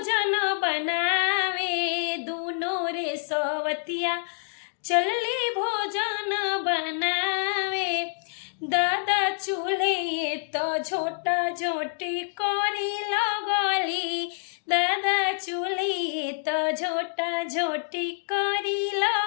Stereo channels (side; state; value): right; silent; digital silence